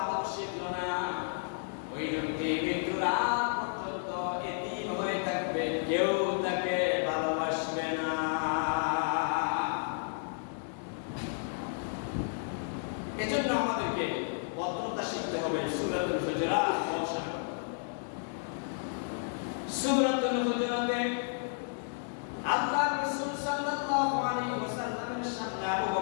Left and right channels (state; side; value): silent; right; digital silence